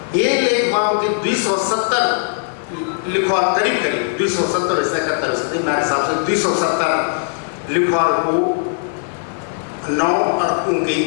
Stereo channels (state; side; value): silent; right; 55 dB below the other